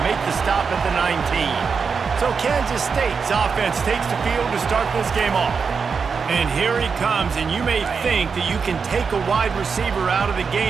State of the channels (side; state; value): left; quieter; 5.6 dB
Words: make the stop at the 19. So Kansas State's offense takes the field to start this game off. And here he comes, and you may think that you can take a wide receiver out of the